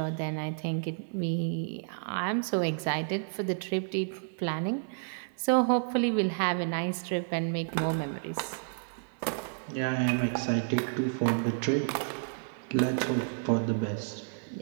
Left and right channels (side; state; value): left; silent; 57 dB below the other